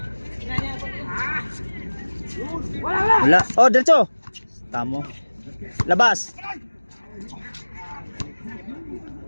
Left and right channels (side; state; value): both; inverted; correlation -1.00